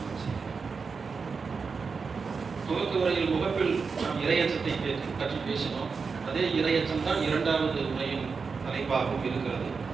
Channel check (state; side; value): quieter; left; 5.1 dB